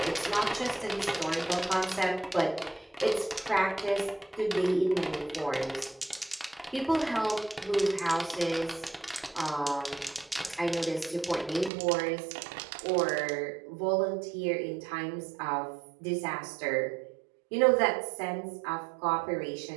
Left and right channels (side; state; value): left; drops out; at 11.7 s